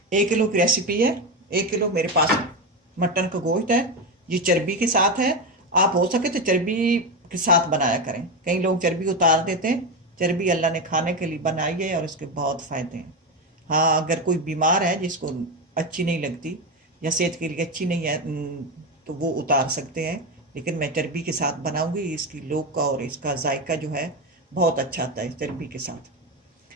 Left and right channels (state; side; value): normal; both; correlation 0.14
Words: 1 किलो की रेसिपी है। 1 किलो मेरे पास मटन का गोश्त है। ये चर्बी के साथ है। आप हो सके तो चर्बी के साथ बनाया करें। कई लोग चर्बी उतार देते हैं। चर्बी अल्लाह ने खाने के लिए बनाई है और इसके बहुत फ़ायदे हैं। हाँ, अगर कोई बीमार है जिसको अच्छी नहीं लगती या सेहत के लिए अच्छी नहीं है तो वो उतार सकते हैं, लेकिन मैं चर्बी के साथ बनाऊंगी। इसकी लोक का और इसका जायका जो है बहुत अच्छा आता है चर्बी के साथ।